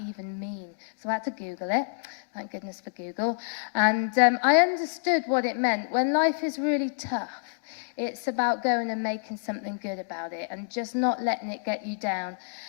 mean? So I had to Google it. Thank goodness for Google. And I understood what it meant. When life is really tough, it's about going and making something good about it and just not letting it get you down.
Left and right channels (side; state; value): right; silent; digital silence